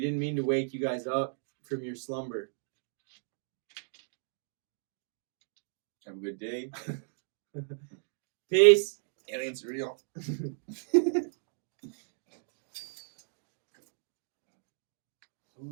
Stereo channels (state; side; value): silent; left; digital silence